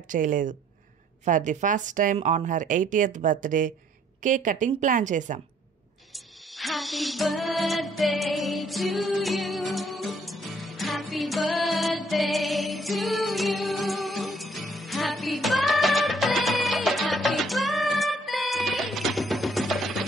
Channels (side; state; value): both; normal; correlation 0.63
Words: చేయలేదు. For the first time on her 80th birthday cake cutting plan చేశాం. Happy birthday to you. Happy birthday to you. Happy birthday, happy birthday.